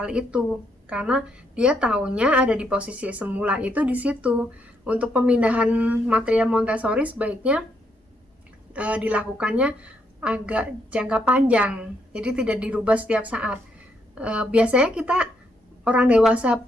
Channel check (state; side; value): normal; both; correlation 0.76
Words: itu karena dia taunya ada di posisi semula itu di situ. Untuk pemindahan material Montessori sebaiknya dilakukannya agak jangka panjang, jadi tidak dirubah setiap saat. Biasanya kita orang dewasa